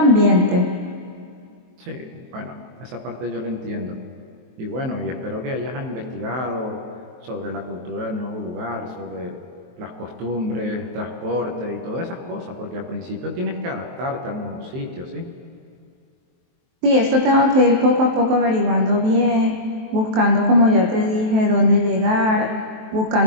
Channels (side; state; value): left; late; 23 ms